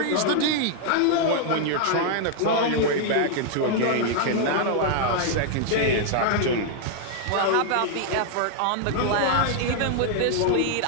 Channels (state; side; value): different; both; correlation 0.00